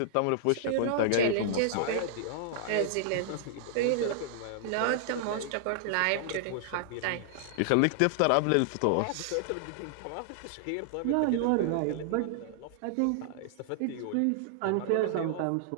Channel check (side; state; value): both; different; correlation -0.01